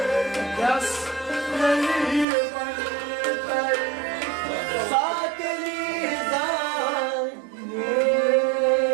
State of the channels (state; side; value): drops out; left; at 2.2 s